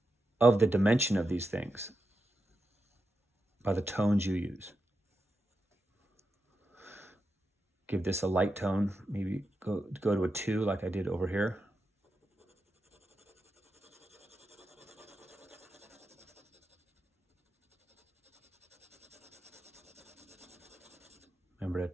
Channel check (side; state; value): both; normal; correlation 0.88